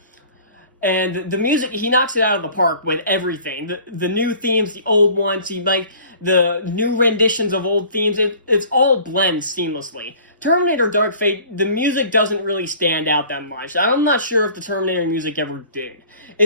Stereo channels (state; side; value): inverted; both; correlation -0.48